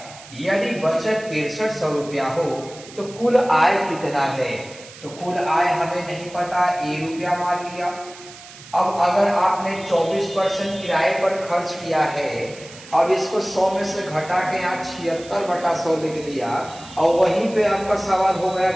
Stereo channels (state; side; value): noise; right; hiss, 18 dB below the sound